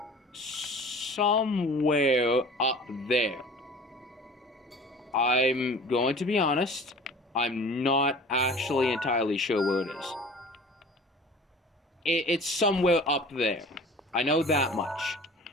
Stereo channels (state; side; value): normal; both; correlation 0.43